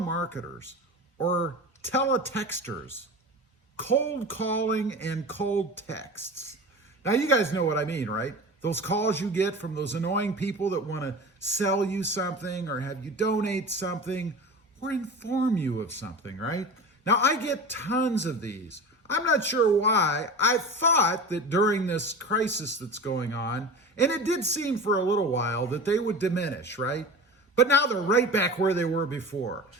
or teletexters, cold calling and cold texts. Now, you guys know what I mean, right? Those calls you get from those annoying people that want to sell you something or have you donate something or inform you of something, right? Now, I get tons of these. I'm not sure why. I thought that during this crisis that's going on, and it did seem for a little while that they would diminish, right? But now they're right back where they were before.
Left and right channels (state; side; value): normal; both; correlation 0.32